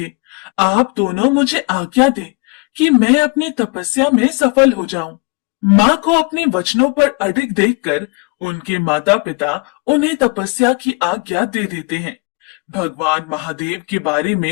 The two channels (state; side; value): quieter; right; 30.9 dB